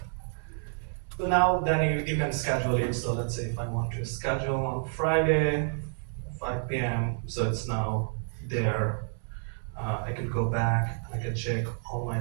now then you can schedule it. So let's say if I want to schedule on Friday, 5 p.m. So it's now there. I can go back. I can check all my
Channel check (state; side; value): silent; left; digital silence